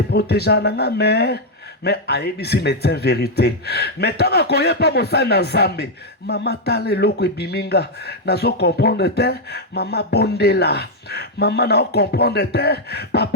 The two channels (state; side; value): normal; both; correlation 0.00